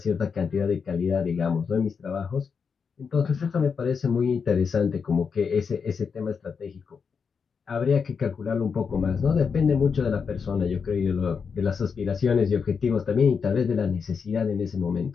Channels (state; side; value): quieter; right; 5.9 dB